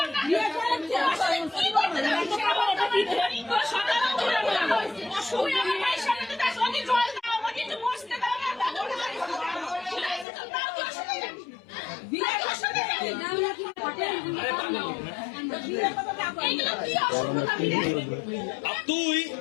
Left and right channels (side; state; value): right; drops out; at 10.2 s